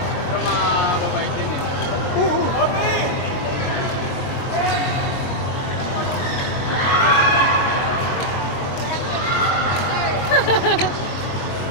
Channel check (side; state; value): right; late; 22 ms